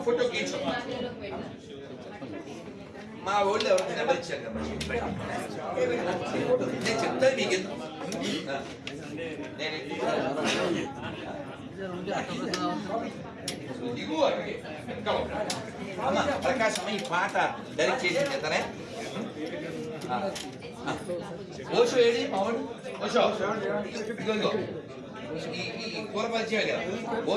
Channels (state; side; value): identical; both; correlation 1.00